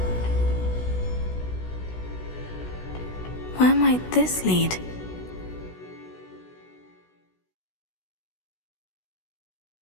Where might this lead?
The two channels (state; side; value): late; right; 16 ms